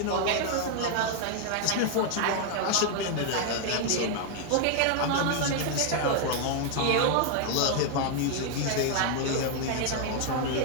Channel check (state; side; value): different; both; correlation 0.00